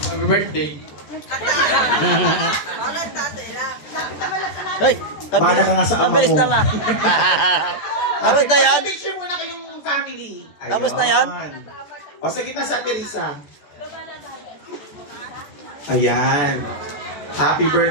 Happy birthday. Hoy! Bahala ka nga sa ama Mabilis mo. naman! Tapos na yan? Picture muna kayong family. Tapos na yan? O sa kita sa Teresa. Ayan. Happy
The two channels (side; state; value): right; late; 14 ms